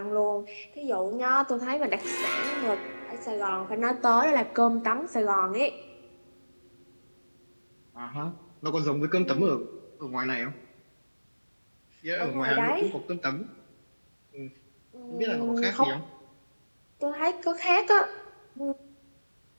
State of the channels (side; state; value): both; inverted; correlation -1.00